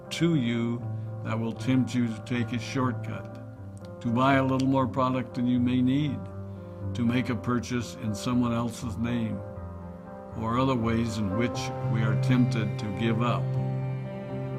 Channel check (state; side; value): identical; both; correlation 1.00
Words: to you that will tempt you to take a shortcut, to buy a little more product than you may need, to make a purchase in someone else's name, or other ways in which we are tempted to give up